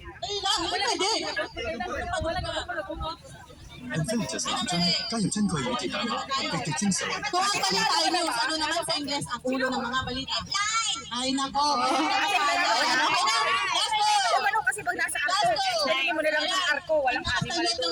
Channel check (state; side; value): identical; both; correlation 1.00